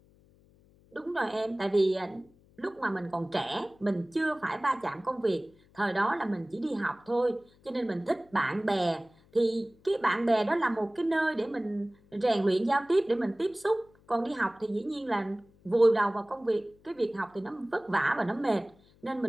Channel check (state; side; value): noise; left; hum, 30 dB below the sound